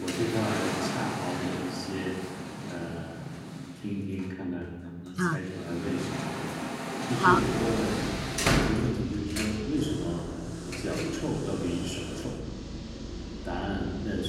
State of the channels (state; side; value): identical; both; correlation 1.00